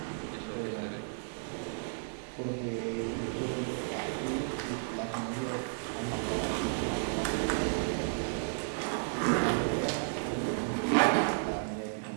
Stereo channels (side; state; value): left; silent; digital silence